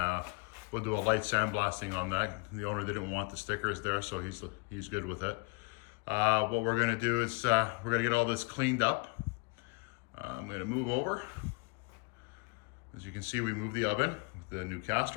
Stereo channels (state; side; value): quieter; right; 30.6 dB